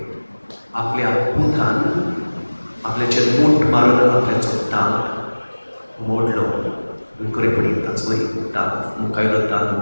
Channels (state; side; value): inverted; both; correlation -1.00